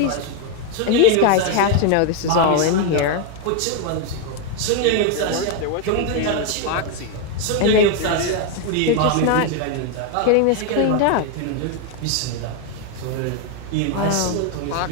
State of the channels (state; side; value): different; both; correlation 0.01